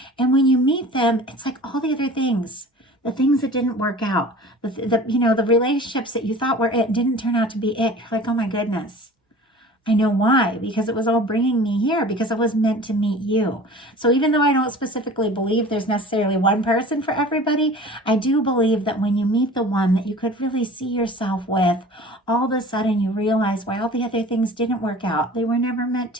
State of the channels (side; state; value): both; normal; correlation 0.42